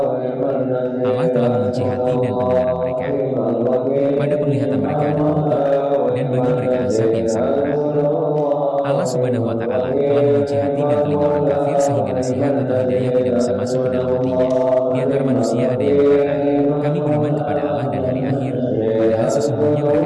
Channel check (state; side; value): identical; both; correlation 1.00